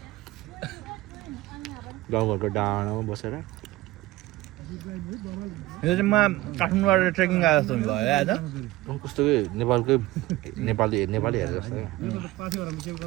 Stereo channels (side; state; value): left; quieter; 17.8 dB